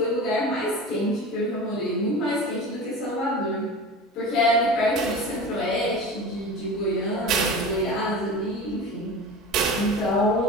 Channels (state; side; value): normal; both; correlation 0.33